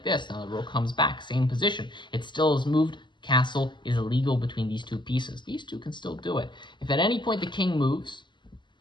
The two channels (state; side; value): late; right; 0.22 ms